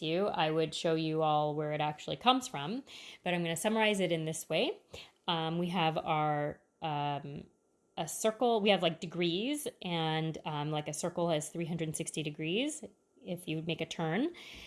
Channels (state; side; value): identical; both; correlation 1.00